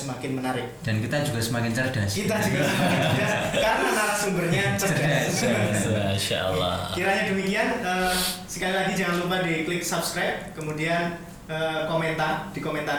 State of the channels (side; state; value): both; identical; correlation 1.00